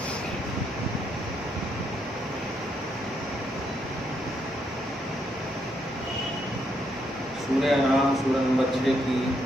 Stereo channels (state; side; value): normal; both; correlation 0.76